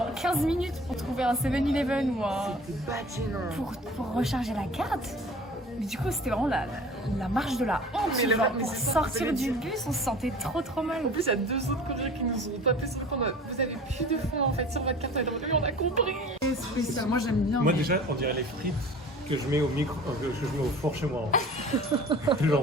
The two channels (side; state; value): both; normal; correlation 0.43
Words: 15 minutes pour trouver un 7-Eleven ou un... pour recharger la carte. Mais du coup c'était vraiment la marche de la honte. Mais genre, mais pour c'est sortir du bus on se sentait trop mal. En plus, il y a 2 autres Coréens qui nous ont tapé sur le compte. Vous avez plus de fonds en fait sur votre carte. Et on a compris. C'est spécial. Moi j'aime bien. Moi déjà, on dirait les frites que je mets au que je mets au four chez moi. Hein.